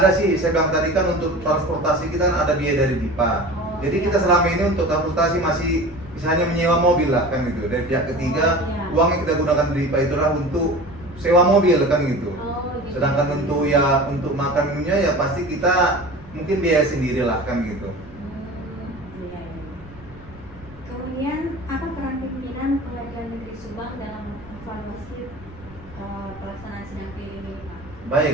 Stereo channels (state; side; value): noise; right; rumble, 23 dB below the sound